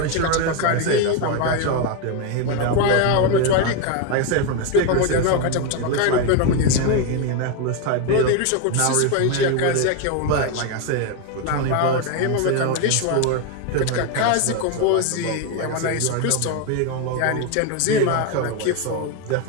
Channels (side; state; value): both; different; correlation 0.02